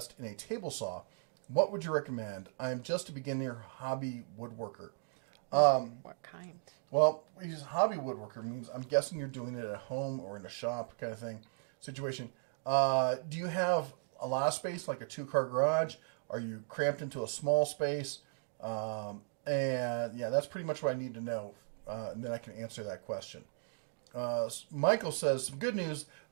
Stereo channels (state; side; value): silent; left; digital silence